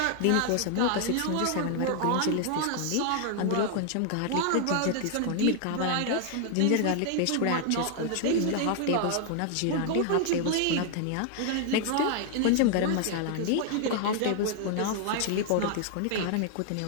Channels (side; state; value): both; different; correlation 0.00